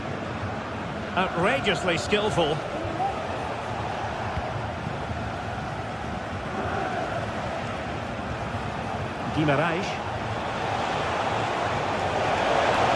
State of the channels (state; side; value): identical; both; correlation 1.00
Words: Outrageously skillful. Guimarães.